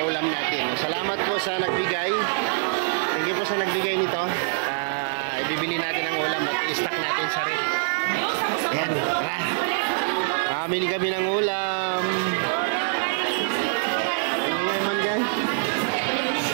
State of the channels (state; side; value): silent; left; digital silence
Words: natin. Salamat po sa nagbigay. Thank you po sa nagbigay nito. Ibibili natin ang ulam at i-stock natin sa rep. Ayan, tara. Mamili kami ng ulam. Ang ingay man dyan.